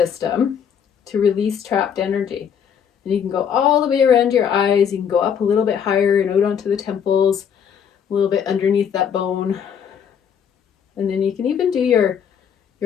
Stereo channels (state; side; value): quieter; right; 7.8 dB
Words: to release trapped energy. And you can go all the way around your eyes. You can go up a little bit higher and out onto the temples, a little bit underneath that bone. And then you can even do your